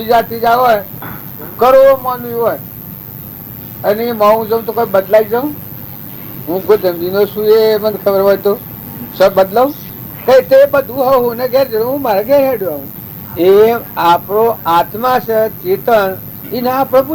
ત્રીજા હોય કરોડો માનવી હોય અને હું જઉં તો કોઈ બદલાઈ જાઉં હું ગોધવીનો છું એ મને ખબર હોય તો સબ બદલાવ કઈ તે બધું હું ને ઘેર હું મારે ઘેર હેડ્યો એ આપણો આત્મા છે ચેતન એને આપણે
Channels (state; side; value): identical; both; correlation 1.00